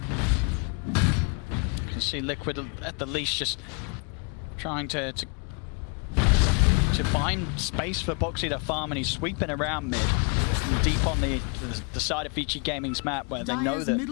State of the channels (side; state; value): right; quieter; 35.5 dB